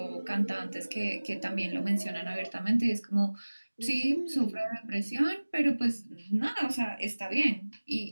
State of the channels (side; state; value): both; inverted; correlation -1.00